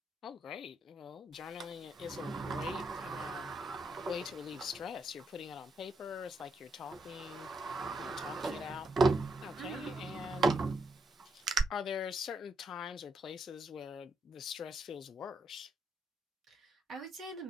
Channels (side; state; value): both; normal; correlation 0.79